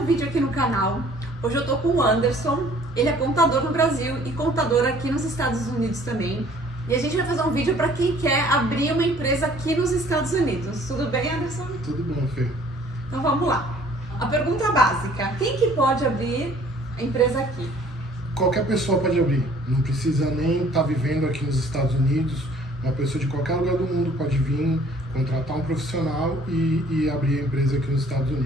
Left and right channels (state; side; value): normal; both; correlation 0.56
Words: vídeo aqui no canal. Hoje eu tô com o Anderson, ele é contador no Brasil e contador aqui nos Estados Unidos também. E a gente vai fazer um vídeo para quem quer abrir uma empresa aqui nos Estados Unidos. Tudo bem, Anderson? Tudo bom, Fê. Então vamos lá. A pergunta básica, quem que pode abrir a empresa aqui? Qualquer pessoa pode abrir, não precisa nem estar vivendo aqui nos Estados Unidos. Uma pessoa de qualquer lugar do mundo pode vir, contratar um profissional e abrir a empresa aqui nos Estados